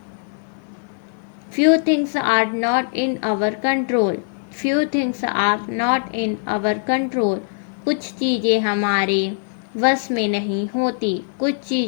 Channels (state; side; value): silent; right; 57 dB below the other